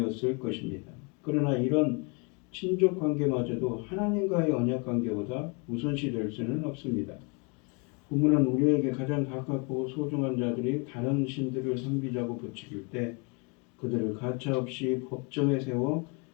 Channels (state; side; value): quieter; right; 33.1 dB